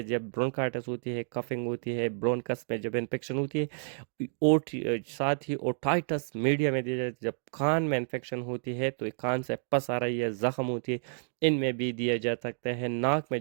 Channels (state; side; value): silent; left; digital silence